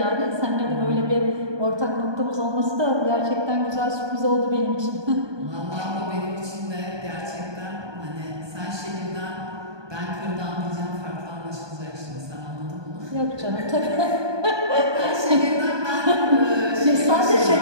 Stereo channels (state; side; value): late; left; 1.2 ms